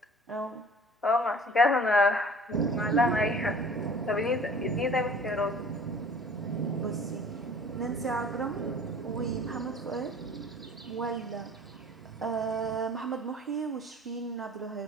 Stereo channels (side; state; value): both; normal; correlation 0.47